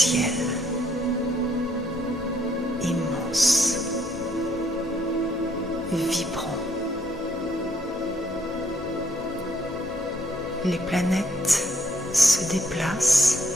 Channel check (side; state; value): both; normal; correlation 0.67